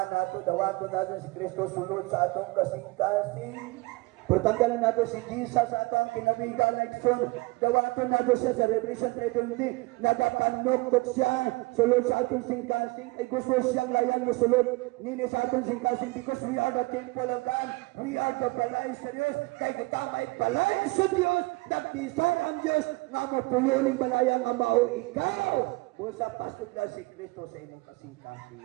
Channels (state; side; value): quieter; left; 23.6 dB